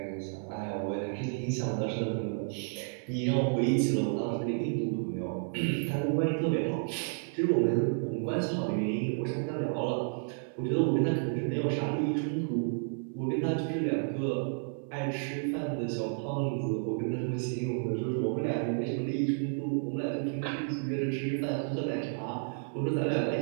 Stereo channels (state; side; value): silent; left; digital silence